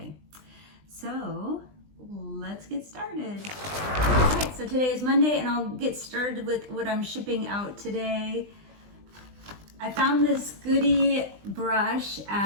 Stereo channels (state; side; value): late; left; 20 ms